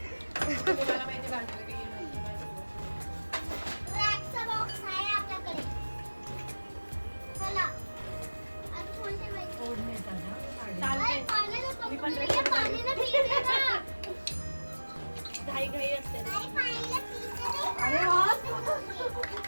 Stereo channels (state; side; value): inverted; both; correlation -1.00